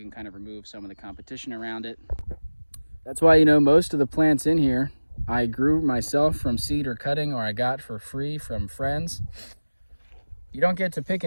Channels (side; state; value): both; inverted; correlation -1.00